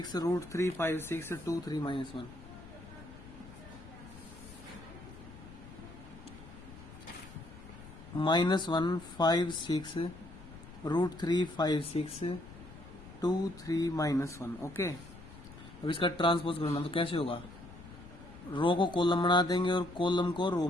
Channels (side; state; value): left; noise; rumble, 17 dB below the sound